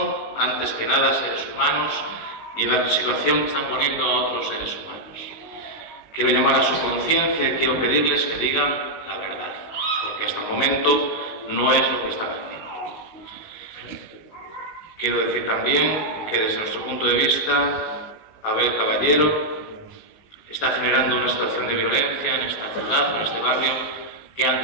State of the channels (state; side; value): late; right; 19 ms